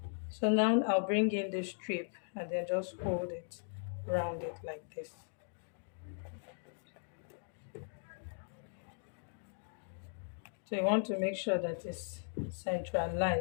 So now I'll bring in the strip and then just hold it, round it like this. So you want to make sure that it's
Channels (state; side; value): silent; right; digital silence